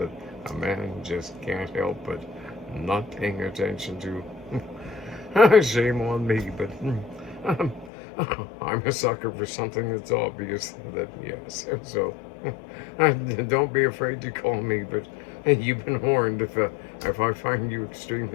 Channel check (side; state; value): right; drops out; at 7.9 s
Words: a man just can't help but not paying attention to. Shame on me, but um, I'm a sucker for something that's obvious that, yes. So don't be afraid to call me, but you've been warned if I find you